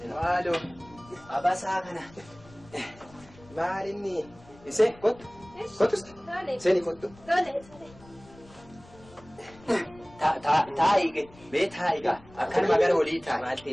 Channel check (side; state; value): left; noise; rumble, 23 dB below the sound